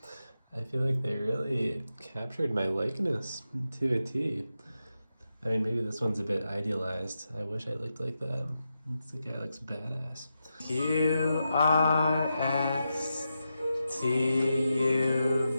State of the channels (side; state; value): both; inverted; correlation -0.88